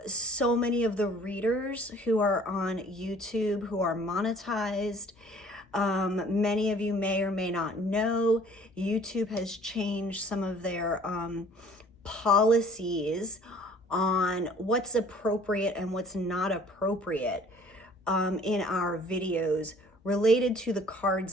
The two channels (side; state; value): both; normal; correlation 0.54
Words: so many of the readers who are on YouTube, who are monetized. Many of you may or may not know, YouTube has changed some of their policies on what's appropriate and what's not appropriate in our videos related to the